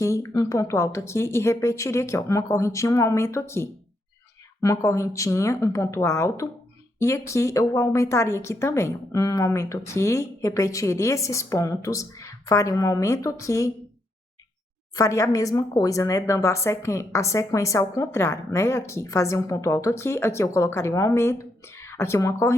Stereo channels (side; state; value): both; normal; correlation 0.79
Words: um ponto alto aqui e repetiria aqui, ó, uma correntinha, um aumento aqui. Uma correntinha, um ponto alto e aqui eu aumentaria aqui também. Um aumento aqui, repetiria esses pontos, faria um aumento aqui, faria a mesma coisa, né? Dando a sequência ao contrário, né? Aqui, fazia um ponto alto aqui, aqui eu colocaria um aumento, aqui uma